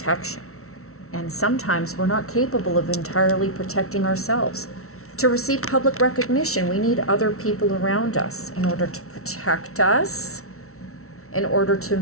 And sometimes we're not capable of entirely protecting ourselves. To receive public recognition, we need other people around us in order to protect us, in order to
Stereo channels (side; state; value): right; late; 0.63 ms